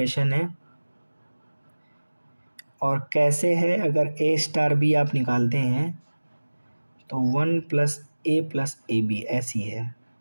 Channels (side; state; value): both; inverted; correlation -1.00